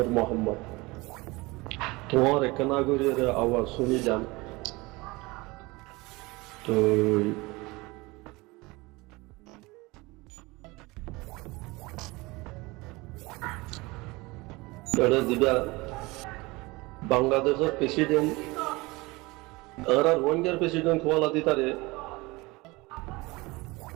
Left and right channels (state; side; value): quieter; left; 23.1 dB